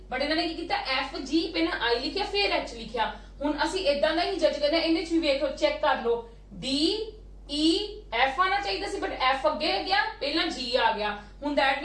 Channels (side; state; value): both; identical; correlation 1.00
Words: बट इन्होंने की कीता FG पहला I लिखिया फिर H लिखिया हुण असी इदां दा ही जज करना इहदे विच भी देखो चेक कर लो DEF आना चाहिए सी बट F अगे गया पहला G आ गया हुण दैट